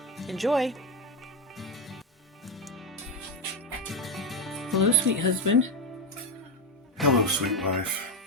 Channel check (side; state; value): both; normal; correlation 0.10